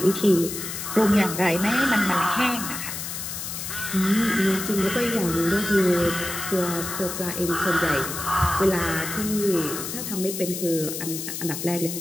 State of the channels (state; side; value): noise; left; hiss, 6 dB below the sound